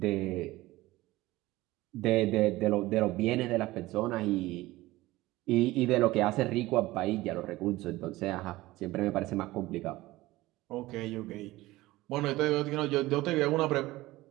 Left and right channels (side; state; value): left; quieter; 18.4 dB